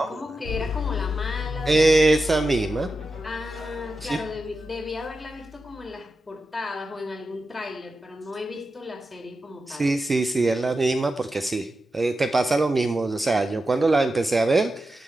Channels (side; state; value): both; normal; correlation 0.90